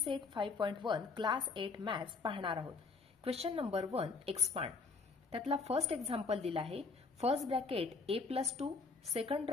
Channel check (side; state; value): right; quieter; 4.4 dB